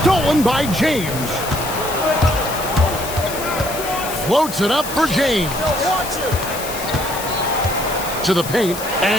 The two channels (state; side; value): noise; left; hiss, 9 dB below the sound